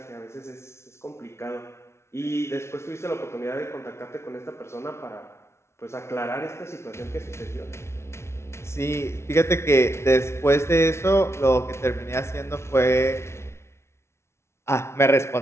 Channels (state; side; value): late; right; 0.13 ms